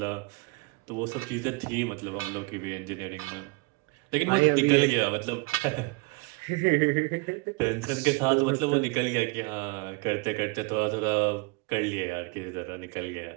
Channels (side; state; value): left; quieter; 27.7 dB